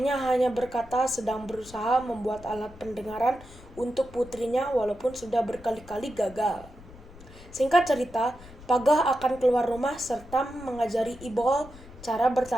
hanya berkata sedang berusaha membuat alat pendengaran untuk putrinya walaupun sudah berkali-kali gagal. Singkat cerita, Pagah akan keluar rumah serta mengajari Ibol cara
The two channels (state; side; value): noise; left; rumble, 19 dB below the sound